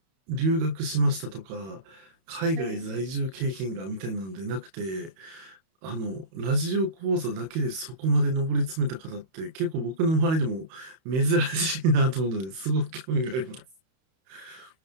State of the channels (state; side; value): late; left; 31 ms